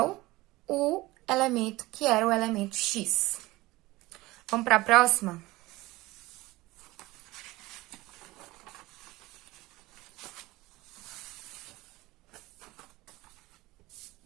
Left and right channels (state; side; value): quieter; left; 19.6 dB